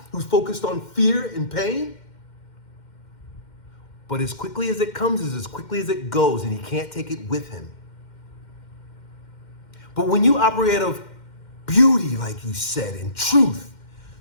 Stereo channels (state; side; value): late; right; 2.1 ms